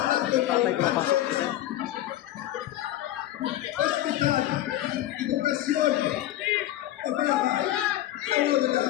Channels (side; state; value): right; quieter; 14.0 dB